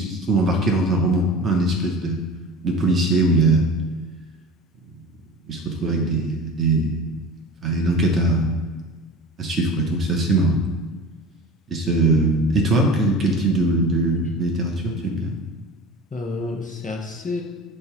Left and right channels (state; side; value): normal; both; correlation 0.36